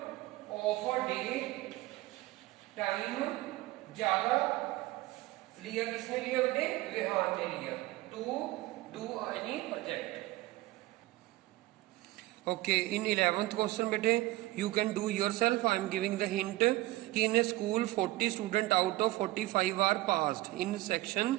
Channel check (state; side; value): quieter; left; 18.6 dB